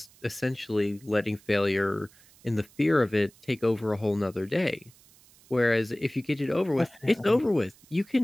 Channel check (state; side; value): noise; right; hiss, 27 dB below the sound